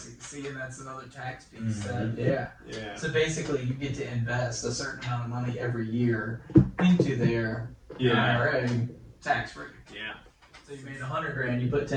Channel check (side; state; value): both; identical; correlation 1.00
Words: See, and that's another tax piece. Mhm. Yeah. Yeah. So basically, you get to invest a certain amount of money every year into their IRA, tax free. Yeah. So you made $100,000, you put